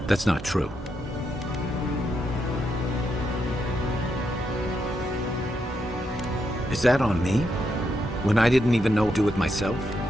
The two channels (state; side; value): normal; both; correlation 0.81